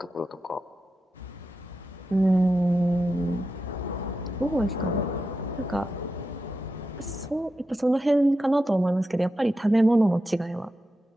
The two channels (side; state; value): both; normal; correlation 0.89